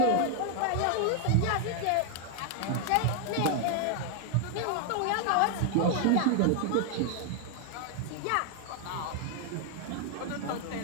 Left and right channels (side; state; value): both; different; correlation 0.00